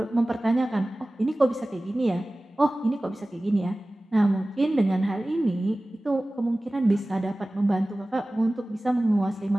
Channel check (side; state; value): both; normal; correlation 0.97